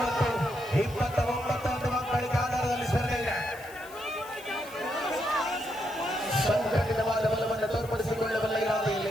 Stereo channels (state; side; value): noise; left; hiss, 20 dB below the sound